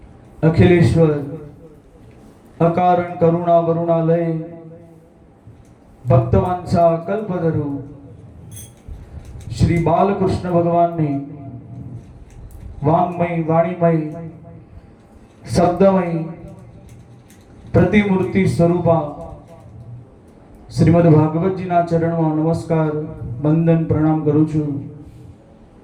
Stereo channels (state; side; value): identical; both; correlation 1.00